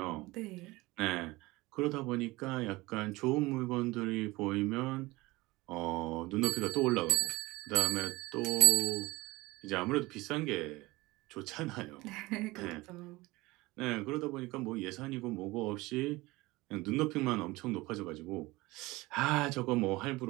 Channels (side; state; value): left; quieter; 21.1 dB